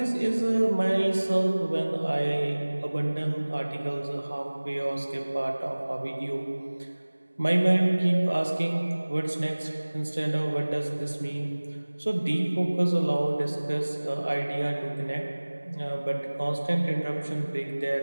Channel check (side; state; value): both; inverted; correlation -1.00